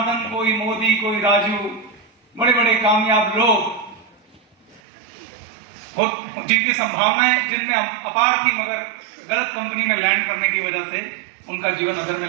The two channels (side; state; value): left; drops out; at 4.8 s